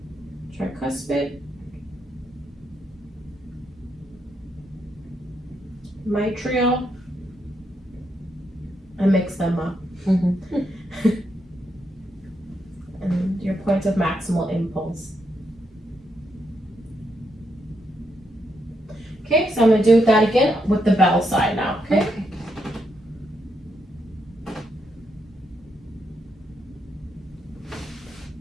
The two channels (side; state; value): both; normal; correlation 0.80